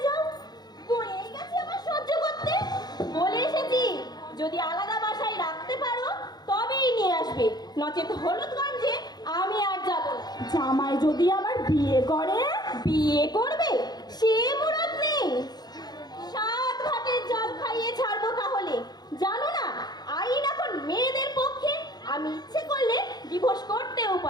যাও। বয়ে গেছে আমার সহ্য করতে। বলে এসেছি যদি আলাদা বাসায় রাখতে পারো তবেই নিয়ে আসবে, নচেত হলুদগঞ্জে আমি আর যাব না। জামাই যদি আবার বিয়ে করে? বিয়ে করবে সে মুরত নেই। 7 ঘাটের জল খাইয়ে ছাড়বো তাহলে। জানো না আইন এখন মেয়েদের পক্ষে। আমি ইচ্ছে করলে ডিভোর্স করতেও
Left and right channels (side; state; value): right; late; 0.20 ms